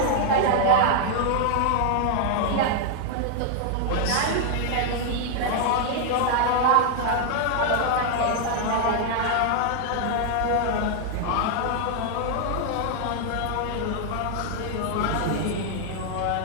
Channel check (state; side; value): different; both; correlation 0.00